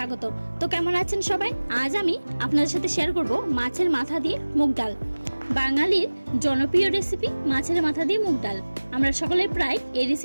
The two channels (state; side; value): inverted; both; correlation -1.00